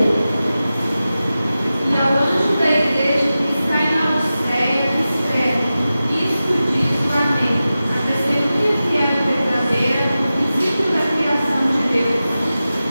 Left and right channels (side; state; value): both; inverted; correlation -0.94